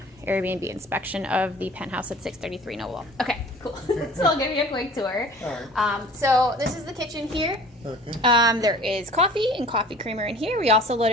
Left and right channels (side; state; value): both; normal; correlation 0.46